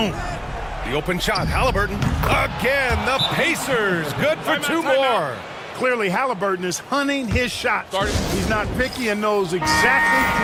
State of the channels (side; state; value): both; identical; correlation 1.00